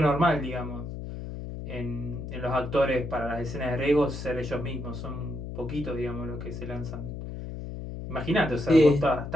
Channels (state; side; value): noise; left; hum, 8 dB below the sound